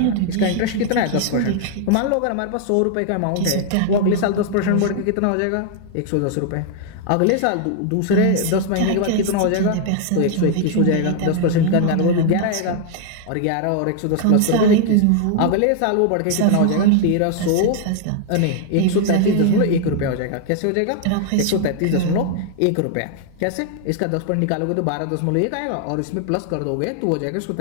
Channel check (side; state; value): both; different; correlation 0.00